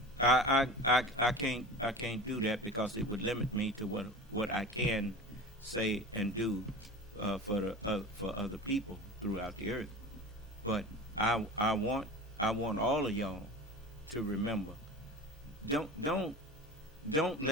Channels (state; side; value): normal; both; correlation 0.34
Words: I can't do that because it would limit me to what I can say and do for other people throughout the earth. But I want all of y'all to remember, don't